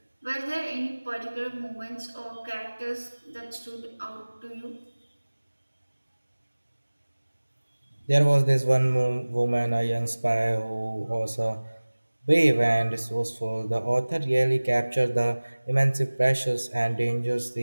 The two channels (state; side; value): inverted; both; correlation -1.00